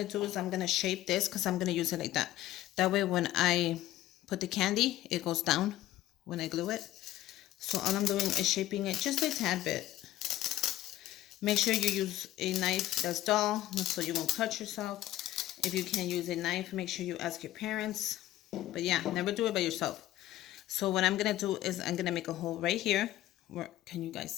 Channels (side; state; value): right; quieter; 14.6 dB